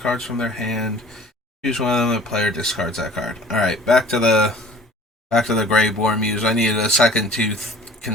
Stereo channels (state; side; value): normal; both; correlation 0.47